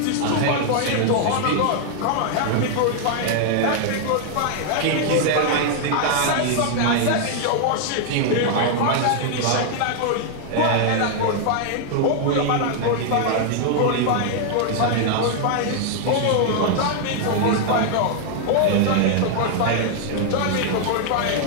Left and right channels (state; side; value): different; both; correlation 0.00